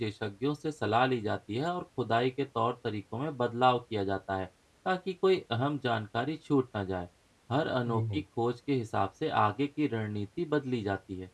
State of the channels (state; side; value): identical; both; correlation 1.00